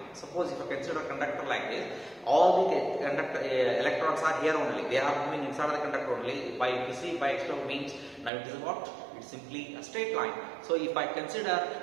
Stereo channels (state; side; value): drops out; left; at 8.3 s